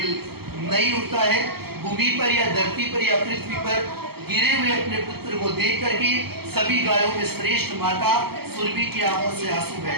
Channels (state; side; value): late; left; 0.96 ms